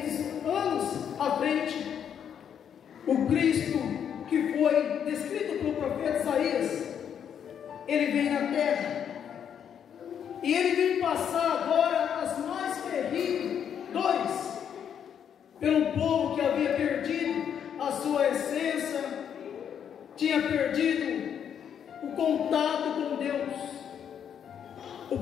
anos à frente. O Cristo que foi descrito pelo profeta Isaías, Ele vem na terra, e Ele vem passar agora as mais terríveis dores pelo povo que havia perdido a sua essência, tinha perdido o contato com Deus. O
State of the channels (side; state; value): right; quieter; 8.5 dB